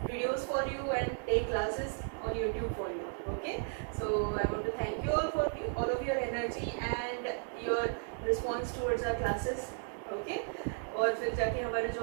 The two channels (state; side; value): silent; left; 55 dB below the other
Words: videos for you and take classes on YouTube for you. Okay, so I want to thank you all for all of your energy and your response towards the classes. Okay, और फिर जाके हमारे